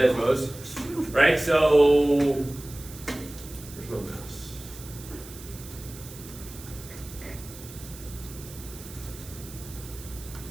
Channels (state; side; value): noise; right; hiss, 16 dB below the sound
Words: Right? So, where's my mouse?